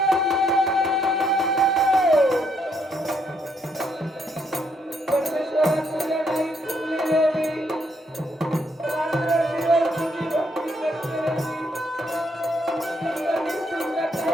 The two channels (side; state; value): both; normal; correlation 0.73